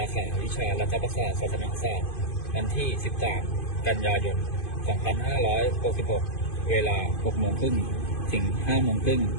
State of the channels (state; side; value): late; right; 2.5 ms